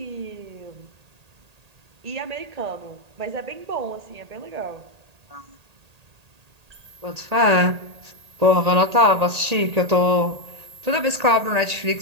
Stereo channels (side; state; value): left; late; 1.8 ms